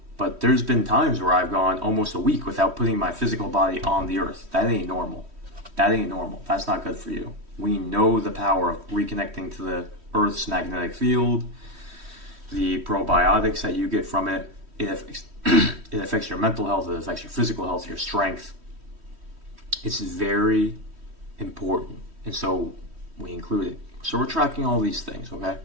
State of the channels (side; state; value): left; late; 3.1 ms